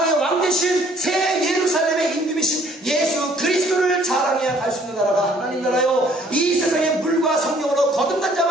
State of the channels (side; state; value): both; normal; correlation 0.60